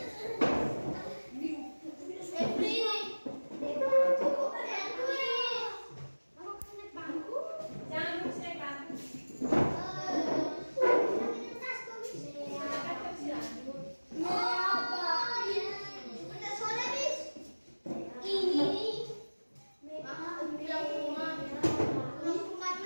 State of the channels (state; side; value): inverted; both; correlation -1.00